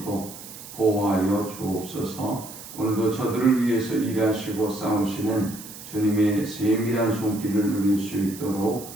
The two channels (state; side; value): noise; right; hiss, 14 dB below the sound